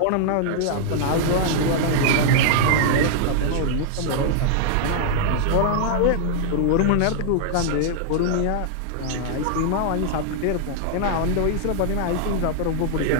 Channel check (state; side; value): different; both; correlation -0.01